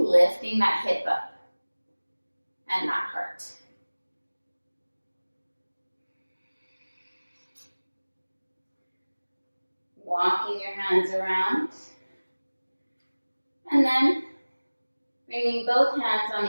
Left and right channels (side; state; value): both; inverted; correlation -1.00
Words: that hip up and that heart. Walking your hands around, and then bringing both hands on